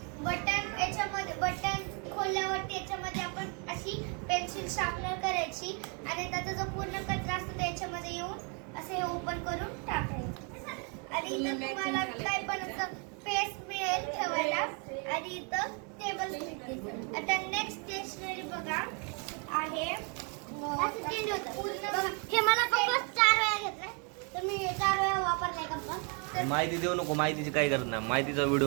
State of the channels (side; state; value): left; quieter; 36.2 dB